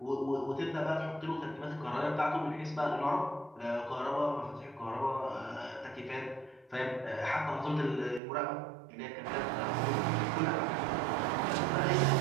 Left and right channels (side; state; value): left; drops out; at 8.2 s